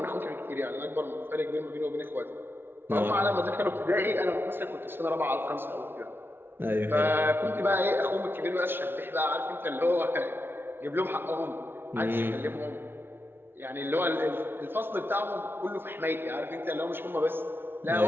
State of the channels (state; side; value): late; left; 0.11 ms